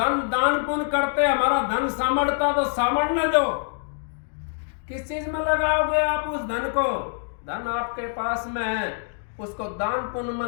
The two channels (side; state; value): right; silent; digital silence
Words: दान पुण्य करते हमारा धन सामर्थता तो सामर्थने दो। किस चीज में लगाओगे आप उस धन को? धन आपके पास में है, उसको दान पुण्य में